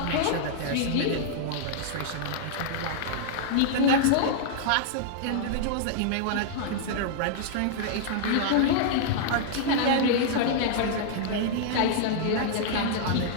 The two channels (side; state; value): both; different; correlation -0.01